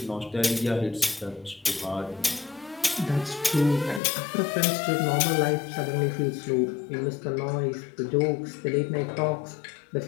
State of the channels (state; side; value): drops out; right; at 4.0 s